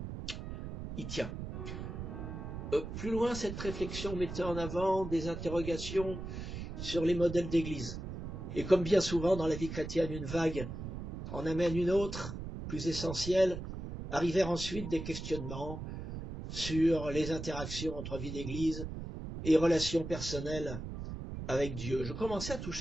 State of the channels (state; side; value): noise; right; rumble, 7 dB below the sound